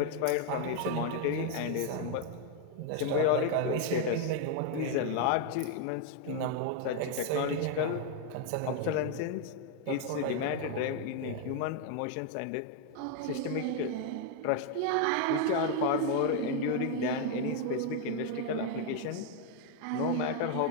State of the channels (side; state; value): both; different; correlation 0.01